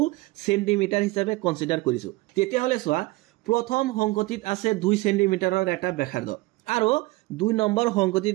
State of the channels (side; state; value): left; quieter; 21.7 dB